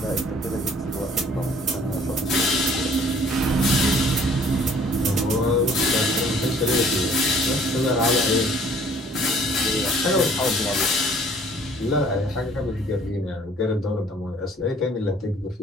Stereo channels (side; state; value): both; normal; correlation 0.56